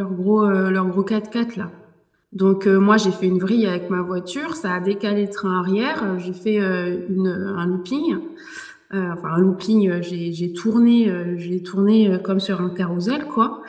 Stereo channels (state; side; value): identical; both; correlation 1.00